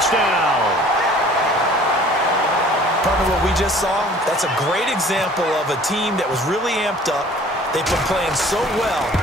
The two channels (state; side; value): normal; both; correlation 0.51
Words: Partner, what we just saw, that's a great example of a team that was really amped up. They've been playing so well,